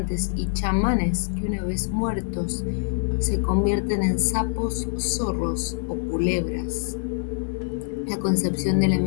y chamanes que una vez muertos se convierten en sapos, zorros o culebras. La concepción de la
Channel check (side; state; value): right; silent; 58 dB below the other